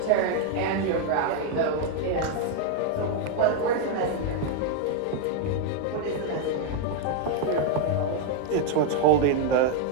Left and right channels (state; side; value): different; both; correlation 0.01